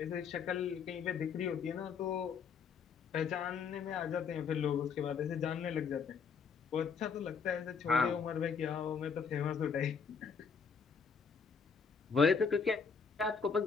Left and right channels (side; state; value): right; quieter; 5.9 dB